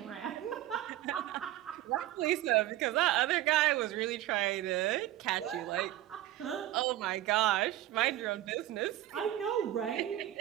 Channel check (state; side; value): quieter; left; 14.1 dB